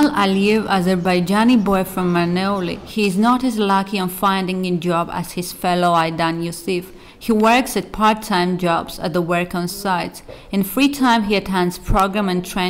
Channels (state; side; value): identical; both; correlation 1.00